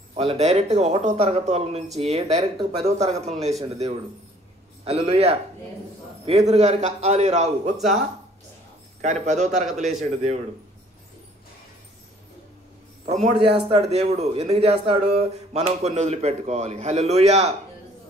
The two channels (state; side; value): normal; both; correlation 0.58